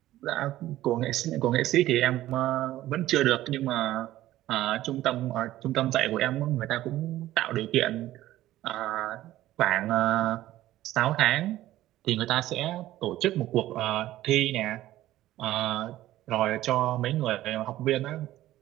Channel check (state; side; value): quieter; left; 14.8 dB